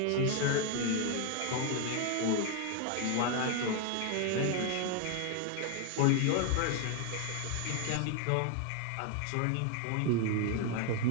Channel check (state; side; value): different; both; correlation 0.01